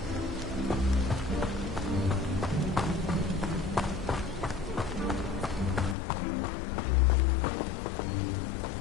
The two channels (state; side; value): drops out; right; at 6.0 s